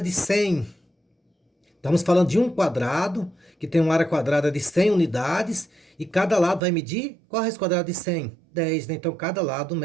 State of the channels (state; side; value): drops out; left; at 6.6 s